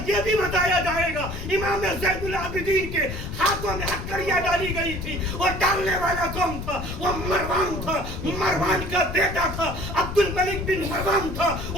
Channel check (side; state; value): left; noise; rumble, 7 dB below the sound